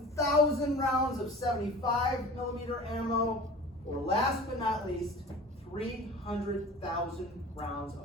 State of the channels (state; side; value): normal; both; correlation 0.41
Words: rounds of 75 millimeter ammo, or last but not least, 300,000 rounds